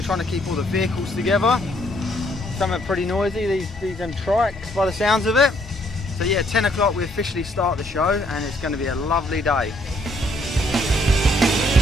trying to keep all the vehicles together. Some are pretty noisy. These are trikes by the sounds of it. So yeah, 10 o'clock we officially start the show, and it's going to be a lovely day.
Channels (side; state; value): both; normal; correlation 0.68